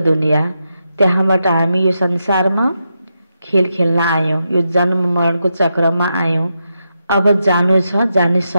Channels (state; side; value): inverted; both; correlation -0.86